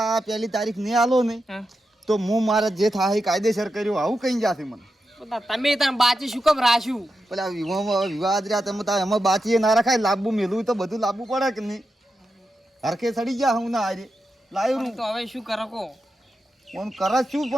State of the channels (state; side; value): normal; both; correlation 0.88